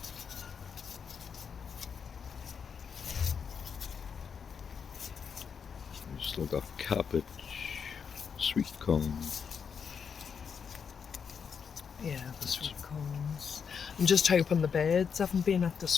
We've still got cabbage, sweet corn. Yeah, the sweet corns. I'm just hoping the birds haven't been at the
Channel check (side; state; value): right; quieter; 6.6 dB